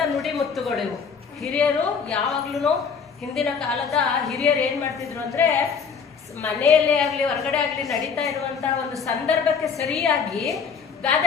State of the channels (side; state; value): right; quieter; 6.1 dB